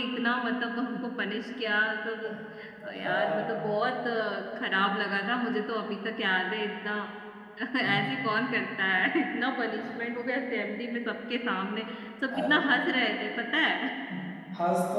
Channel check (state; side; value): identical; both; correlation 1.00